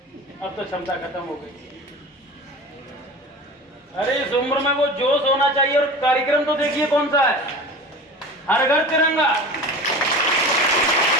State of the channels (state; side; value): normal; both; correlation 0.35